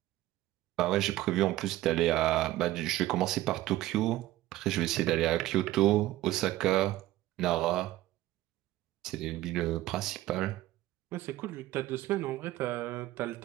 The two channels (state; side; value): quieter; left; 15.9 dB